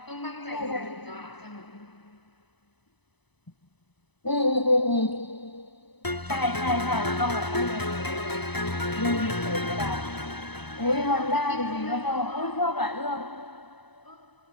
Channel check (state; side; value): late; right; 0.99 ms